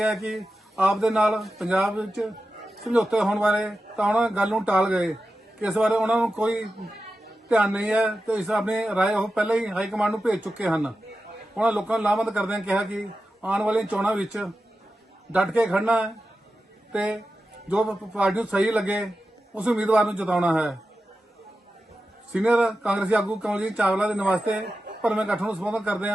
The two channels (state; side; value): normal; both; correlation 0.92